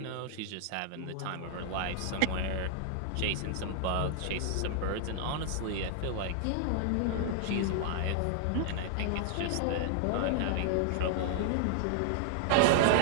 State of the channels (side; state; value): both; different; correlation -0.01